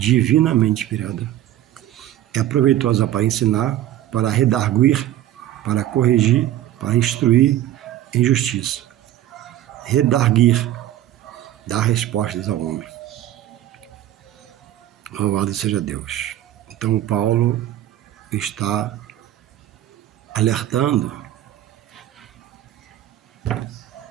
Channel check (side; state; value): left; quieter; 13.0 dB